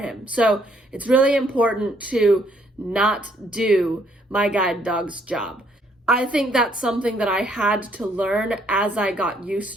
So it's really important to not do my guide dog's job. I think that's something that I had to learn as I got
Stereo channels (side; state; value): both; normal; correlation 0.68